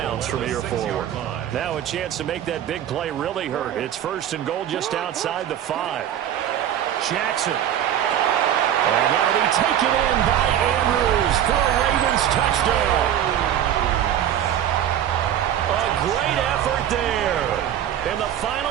from here forward. Now a chance to make that big play really hurt. It's first and goal just outside the 5. Jackson. And that'll be taken in by Andrews for a Ravens touchdown. A great effort there in the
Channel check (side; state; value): left; quieter; 10.6 dB